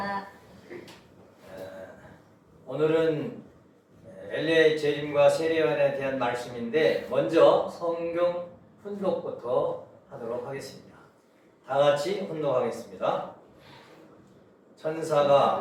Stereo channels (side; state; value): both; identical; correlation 1.00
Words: 오늘은 엘리야의 재림과 세례요한에 대한 말씀인데 먼저 성경 훈독부터 하도록 하겠습니다. 다 같이 훈독하겠습니다.